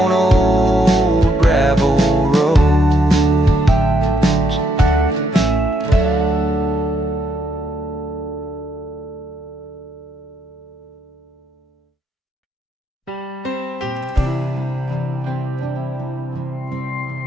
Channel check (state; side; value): normal; both; correlation 0.74